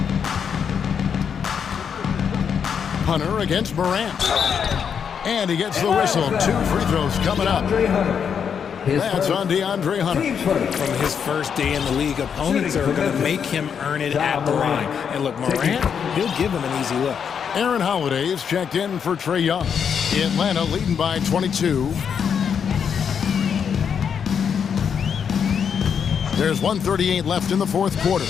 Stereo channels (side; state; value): right; quieter; 7.3 dB